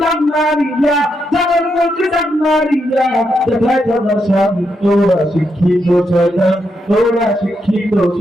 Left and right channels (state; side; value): normal; both; correlation 0.81